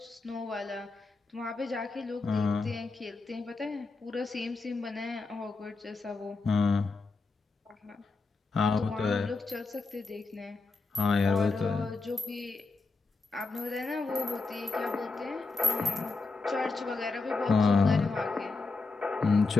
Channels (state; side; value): quieter; right; 3.8 dB